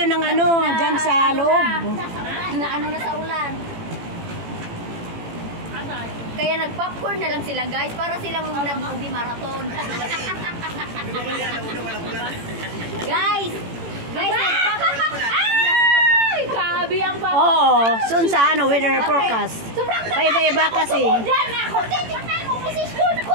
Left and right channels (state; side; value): late; left; 18 ms